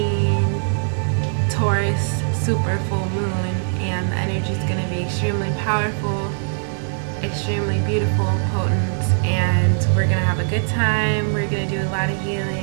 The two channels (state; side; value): silent; left; digital silence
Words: Taurus super full moon, and the energy is going to be extremely powerful, extremely beautiful, potent, and we're gonna have a good time. We're gonna do a lot of